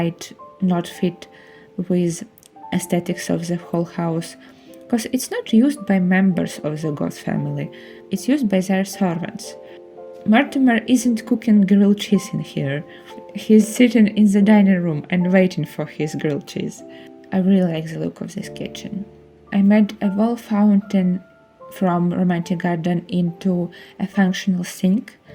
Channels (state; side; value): identical; both; correlation 1.00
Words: not fit with aesthetics of the whole house, because it's not used by members of the Goth family, it's used by their servants. Mortimer isn't cooking grilled cheese in here. He's sitting in the dining room and waiting for his grilled cheese. I really like the look of this kitchen. I made a wall fountain from Romantic Garden into a functional sink,